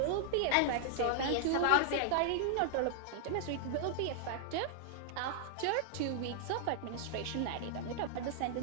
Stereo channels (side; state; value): both; different; correlation -0.01